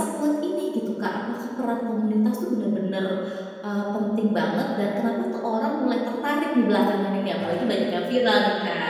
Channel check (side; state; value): both; identical; correlation 1.00